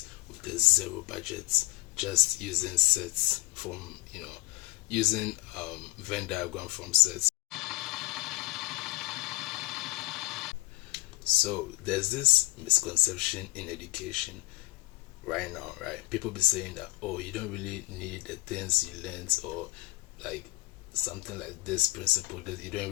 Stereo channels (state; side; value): quieter; right; 21.6 dB